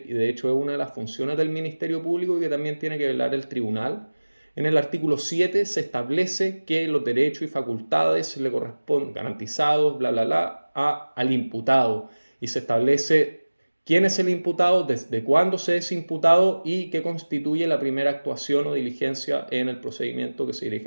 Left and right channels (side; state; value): both; inverted; correlation -1.00